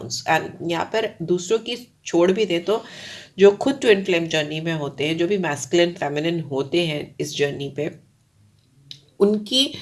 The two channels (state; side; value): identical; both; correlation 1.00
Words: and यहाँ पर दूसरों की छोड़ भी दें तो जो खुद ट्विन फ्लेम जर्नी में होते हैं, जो भी मैस्कुलिन फेमिनिन होते हैं इस जर्नी पे, उनकी